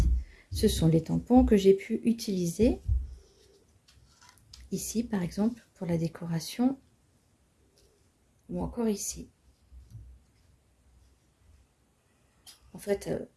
Ce sont les tampons que j'ai pu utiliser ici, par exemple, pour la décoration, ou encore ici. En fait,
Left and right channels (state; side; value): identical; both; correlation 1.00